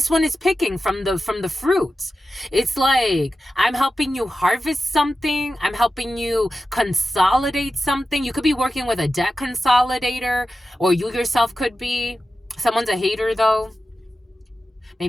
one is picking from the fruits. It's like, I'm helping you harvest something. I'm helping you consolidate something. You could be working with a debt consolidator, or you yourself could be. Someone's a hater though.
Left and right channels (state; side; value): normal; both; correlation 0.93